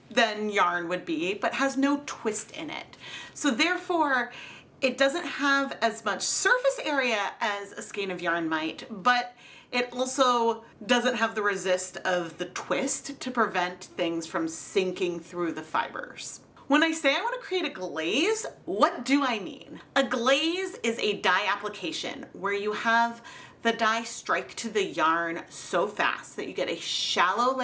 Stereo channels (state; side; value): identical; both; correlation 1.00